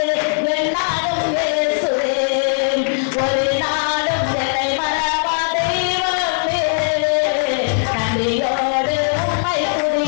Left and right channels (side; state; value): right; silent; 67 dB below the other